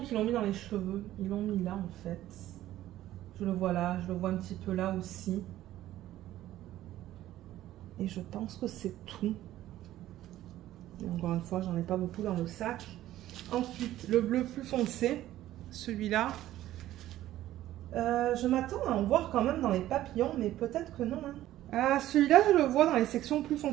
l'ont mis dans les cheveux. Ils l'ont mis là, en fait. Je le vois là, je le vois un petit peu là aussi. Et je pense que c'est tout. Et encore une fois, j'en ai pas beaucoup dans le sac. Ensuite, le bleu plus foncé, celui-là. Je m'attends à en voir quand même dans les papillons, mais peut-être que non. Hein. Ah, celui-là, je le vois dans les sections plus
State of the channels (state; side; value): quieter; left; 14.0 dB